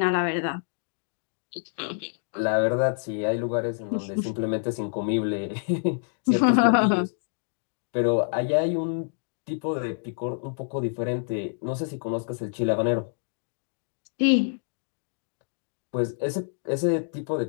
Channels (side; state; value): right; silent; digital silence